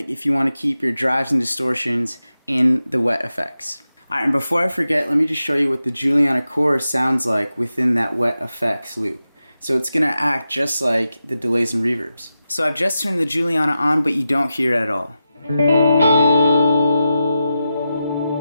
if you want to keep your drives and distortions in the wet effects. Alright, and before I forget, let me just show you what the Juliana chorus sounds like within that wet effects loop. So it's going to act just like the delays and reverbs. So I've just turned the Juliana on, but you don't hear it at all.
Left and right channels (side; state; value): both; inverted; correlation -0.90